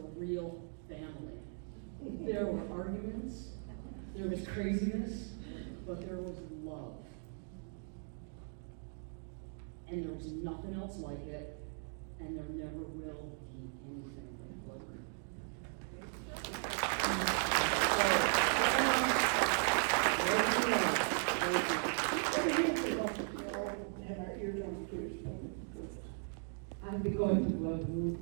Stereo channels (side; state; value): left; silent; 53 dB below the other